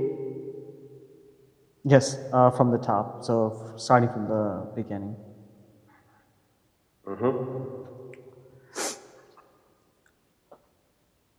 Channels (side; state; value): both; identical; correlation 1.00